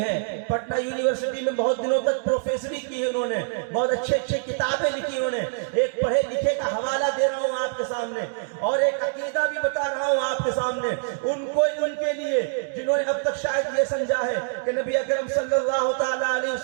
ہیں, پٹنہ یونیورسٹی میں بہت دنوں تک پروفیسری کی ہے انہوں نے, بہت اچھے کتابیں لکھی انہوں نے. ایک پڑھے لکھے کا حوالہ دے رہا ہوں آپ کے سامنے, اور ایک عقیدہ بھی بتا رہا ہوں آپ کے سامنے. ان کے لیے جنہوں نے اب تک شاید یہ سمجھا ہے کہ نبی اکرم صلی اللہ تعالیٰ علیہ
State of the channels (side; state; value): left; silent; digital silence